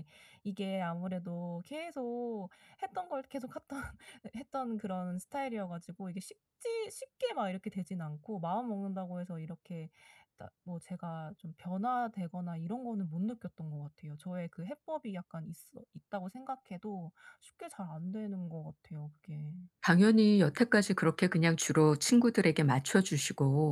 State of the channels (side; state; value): both; identical; correlation 1.00